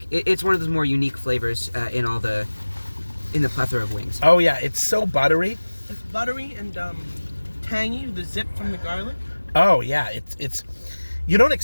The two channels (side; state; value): both; inverted; correlation -1.00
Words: it's one of those more unique flavors in the plethora of wings. Oh yeah, it's so buttery. It's buttery and tangy. The zip from the garlic. Oh yeah, it's. You don't